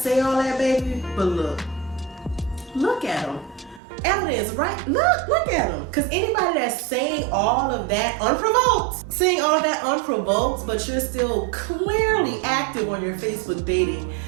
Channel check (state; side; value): drops out; left; at 3.8 s